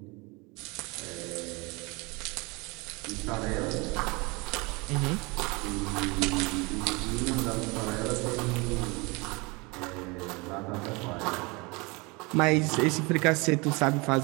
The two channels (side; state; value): left; quieter; 26.8 dB